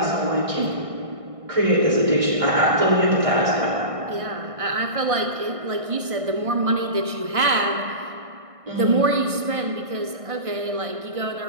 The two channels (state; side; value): late; left; 1.6 ms